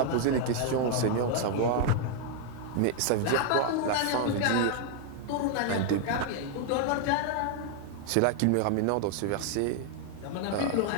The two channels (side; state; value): both; different; correlation 0.00